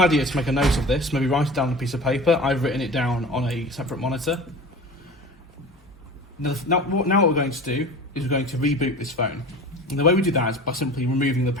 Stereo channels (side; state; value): both; normal; correlation 0.37